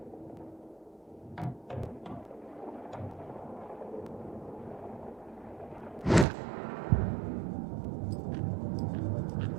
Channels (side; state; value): left; drops out; at 6.2 s